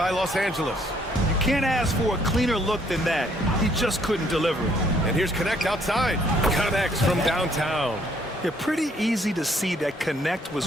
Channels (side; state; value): both; normal; correlation 0.66